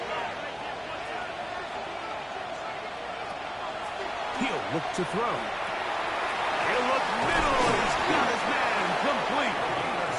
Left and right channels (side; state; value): both; identical; correlation 1.00